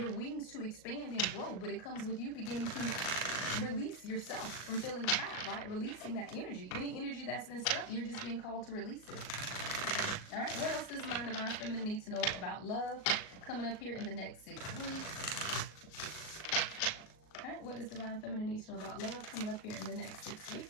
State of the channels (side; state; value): right; late; 38 ms